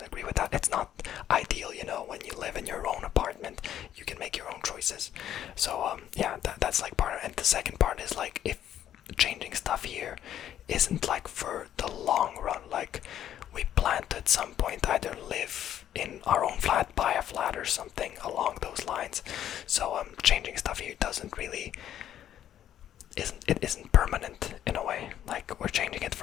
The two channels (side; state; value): right; quieter; 10.9 dB